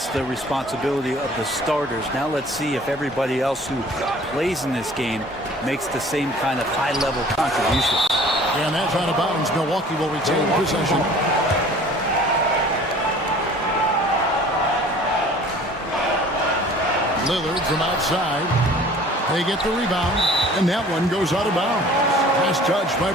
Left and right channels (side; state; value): both; normal; correlation 0.49